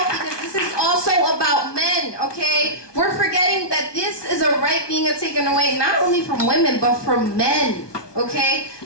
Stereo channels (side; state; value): right; late; 1.2 ms